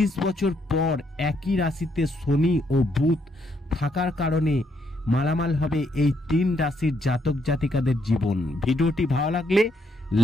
বছর পর একই রাশিতে শনি ও বুধ থাকার কারণে মালামাল হবে এই 3 রাশির জাতক জাতিকাদের জীবন। ভিডিওটি ভালো লাগলে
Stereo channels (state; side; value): normal; both; correlation 0.75